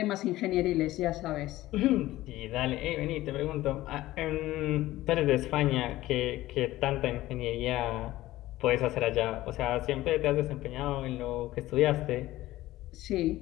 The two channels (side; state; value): right; quieter; 16.3 dB